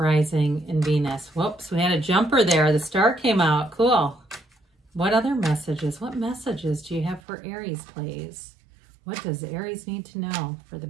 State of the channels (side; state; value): left; drops out; at 7.2 s